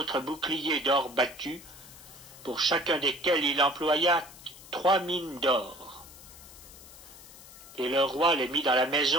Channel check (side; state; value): left; noise; hiss, 18 dB below the sound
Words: boucliers d'or battu, pour chacun desquels il employa 3 mines d'or. et le roi les mit dans la